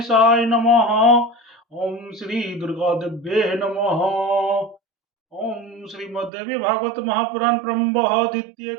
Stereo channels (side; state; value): left; drops out; at 6.3 s